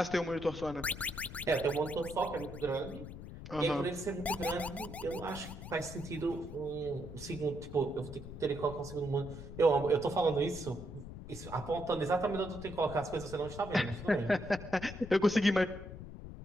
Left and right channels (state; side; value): noise; left; rumble, 11 dB below the sound